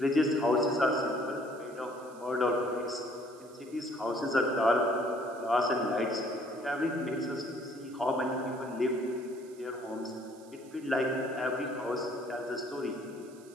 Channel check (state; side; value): noise; right; hiss, 25 dB below the sound